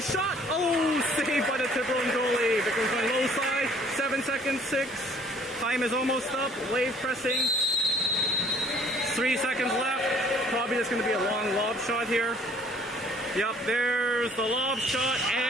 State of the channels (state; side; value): normal; both; correlation 0.57